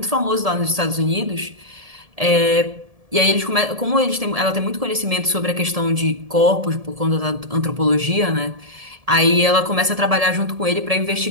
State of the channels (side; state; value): left; late; 1.7 ms